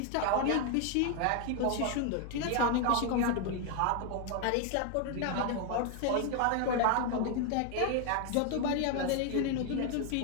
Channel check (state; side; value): different; both; correlation 0.01